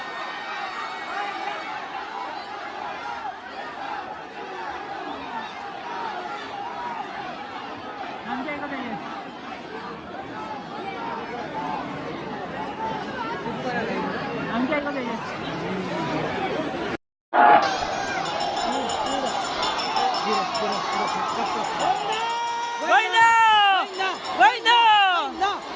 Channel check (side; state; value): both; identical; correlation 1.00